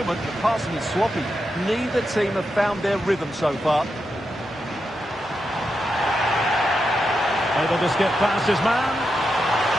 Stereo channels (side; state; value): both; normal; correlation 0.86